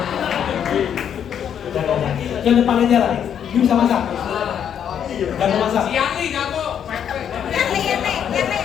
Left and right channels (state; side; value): quieter; right; 8.8 dB